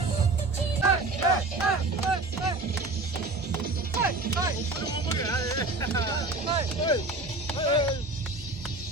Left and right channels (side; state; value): left; quieter; 3.0 dB